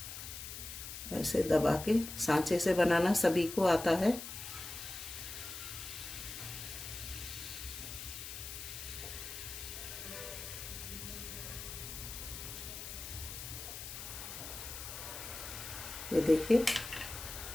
ऐसे दबा के, सांचे से बनाना सभी को आता है। ये देखिए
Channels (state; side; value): noise; left; hiss, 9 dB below the sound